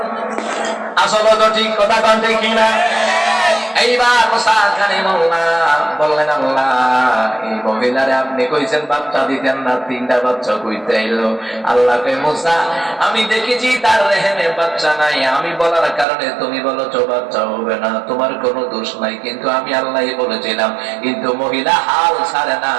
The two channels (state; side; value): drops out; left; at 16.1 s